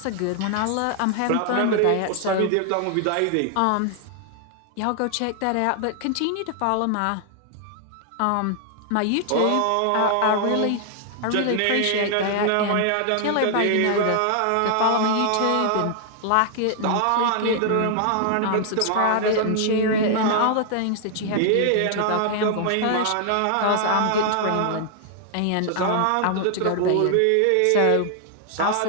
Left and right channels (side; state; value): both; different; correlation 0.00